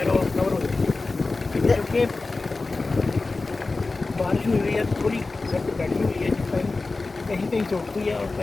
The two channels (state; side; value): quieter; right; 3.6 dB